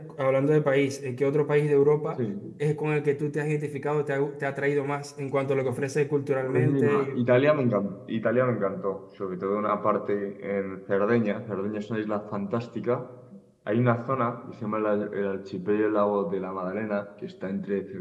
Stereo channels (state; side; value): identical; both; correlation 1.00